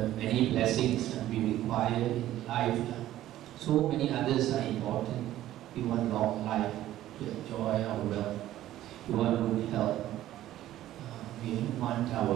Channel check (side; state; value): left; quieter; 13.7 dB